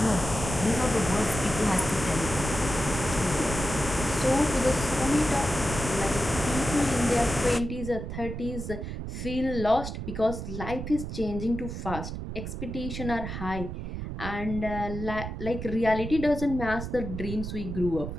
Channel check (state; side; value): noise; right; rumble, 6 dB below the sound